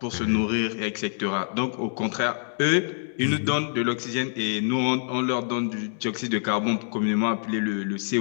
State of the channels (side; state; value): right; silent; digital silence